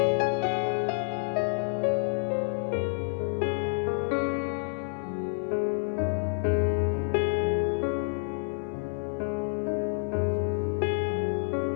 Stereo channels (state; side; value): silent; right; 59 dB below the other